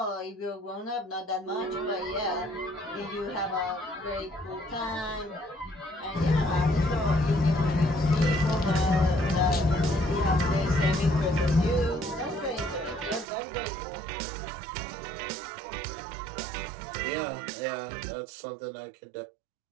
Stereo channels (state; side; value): drops out; left; at 13.2 s